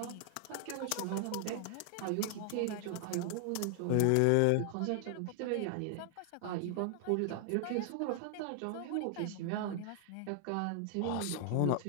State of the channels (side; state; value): both; different; correlation 0.00